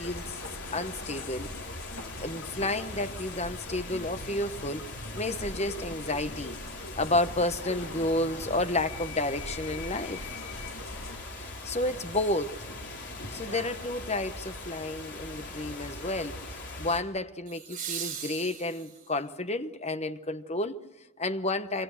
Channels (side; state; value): both; normal; correlation 0.20